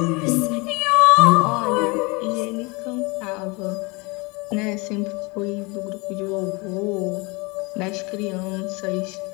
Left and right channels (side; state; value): right; quieter; 27.3 dB